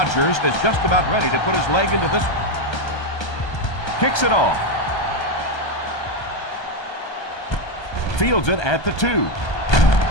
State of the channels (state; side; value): late; right; 1.3 ms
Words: is just about ready to put his leg into this one. Kicks it off. Fields it at the 2.